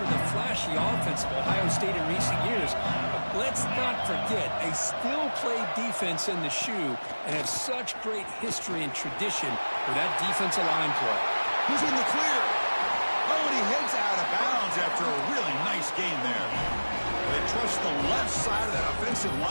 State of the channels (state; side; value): inverted; both; correlation -1.00